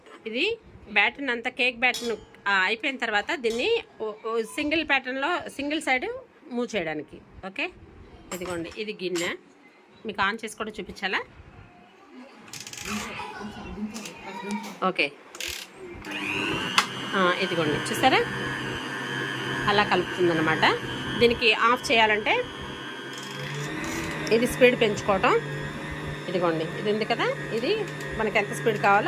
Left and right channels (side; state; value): both; identical; correlation 1.00